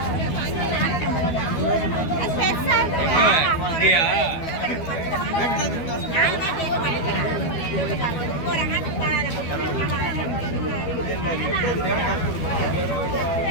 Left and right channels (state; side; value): late; right; 12 ms